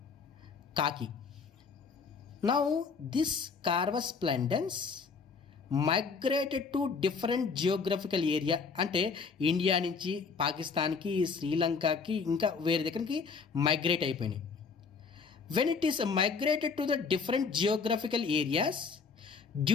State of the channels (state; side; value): quieter; right; 5.2 dB